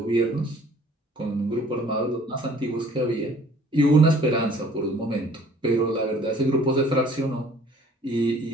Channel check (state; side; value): normal; both; correlation 0.54